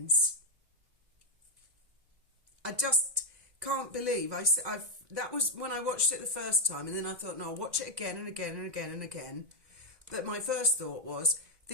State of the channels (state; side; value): late; left; 2.0 ms